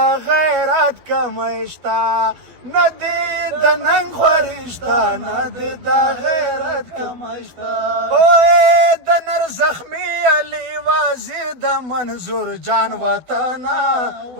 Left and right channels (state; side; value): late; left; 12 ms